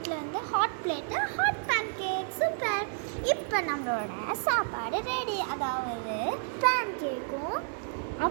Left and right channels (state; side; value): silent; left; 57 dB below the other